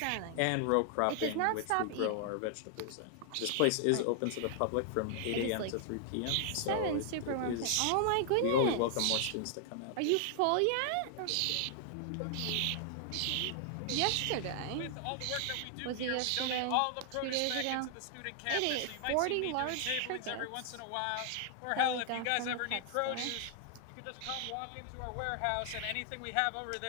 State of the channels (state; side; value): different; both; correlation 0.00